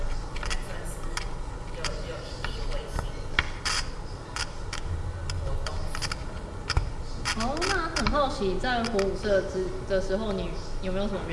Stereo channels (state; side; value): identical; both; correlation 1.00